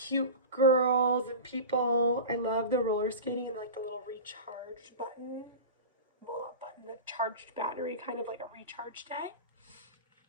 girls and people. I love the roller skating and like the little recharge button. Well, not button, the charged battery, kind of like a recharge day.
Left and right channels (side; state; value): both; inverted; correlation -0.30